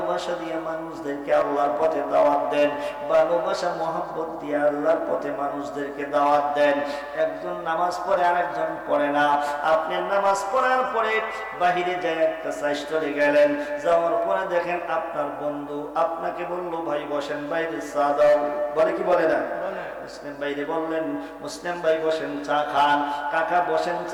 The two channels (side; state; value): both; identical; correlation 1.00